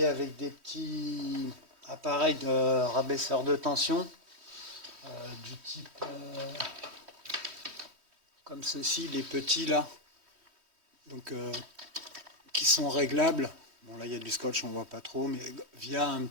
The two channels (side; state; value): left; late; 3.1 ms